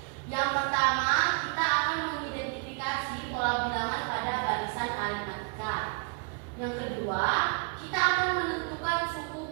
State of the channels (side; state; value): left; quieter; 35.9 dB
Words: Yang pertama, kita akan mengidentifikasi pola bilangan pada barisan aritmatika. Yang kedua, kita akan menentukan